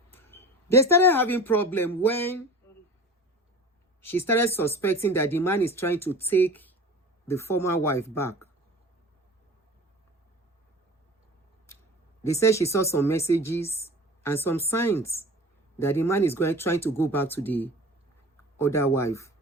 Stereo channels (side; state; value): both; normal; correlation 0.38